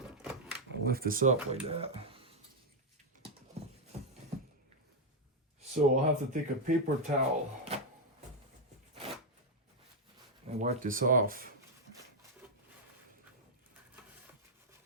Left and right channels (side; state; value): both; normal; correlation 0.00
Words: Lift this up like that. So I'll have to take a paper towel and wipe this off.